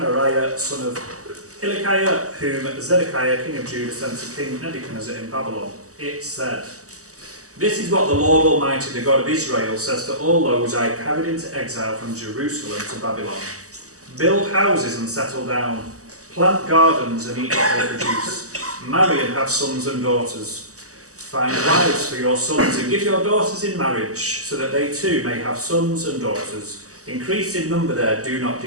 son of Hilkiah, whom Zedekiah, king of Judah, sent to King Nebuchadnezzar in Babylon. It said, "This is what the Lord Almighty, the God of Israel, says to all those I carried into exile from Jerusalem to Babylon. Build houses and settle down. Plant gardens and eat what they produce. Marry and have sons and daughters. Find wives for your sons and give your daughters in marriage, so that they too may have sons and daughters. Increase in number there, do not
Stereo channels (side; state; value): left; late; 0.66 ms